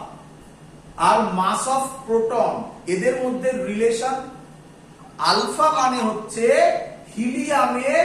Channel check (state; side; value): identical; both; correlation 1.00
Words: আর মাস অফ প্রোটন এদের মধ্যে রিলেশন? আলফা মানে হচ্ছে হিলিয়ামের